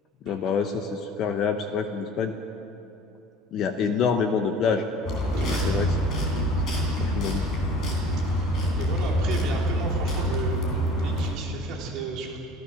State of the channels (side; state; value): both; normal; correlation 0.45